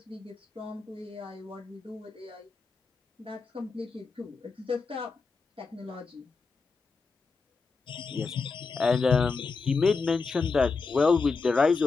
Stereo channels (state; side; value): quieter; right; 4.5 dB